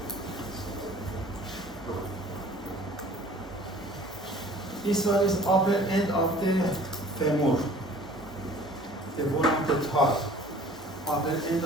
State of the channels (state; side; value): normal; both; correlation 0.49